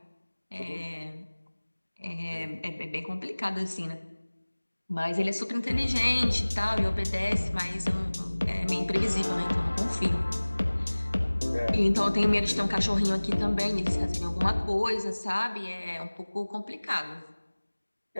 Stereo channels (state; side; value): inverted; both; correlation -1.00